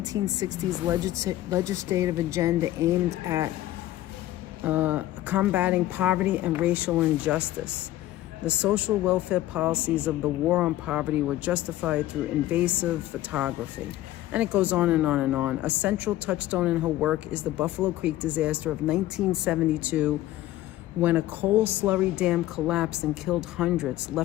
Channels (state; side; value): quieter; right; 15.0 dB